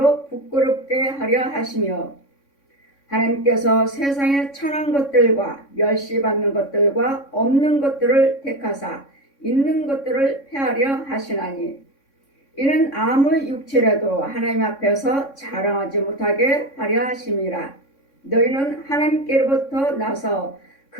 부끄럽게 하려 하시며 하나님께서 세상에 천한 것들과 멸시받는 것들과 없는 것들을 택하사 있는 것들을 폐하려 하시나니 이는 아무 육체라도 하나님 앞에서 자랑하지 못하게 하려 하심이라. 너희는 하나님께로부터 나서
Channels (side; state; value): right; late; 3.6 ms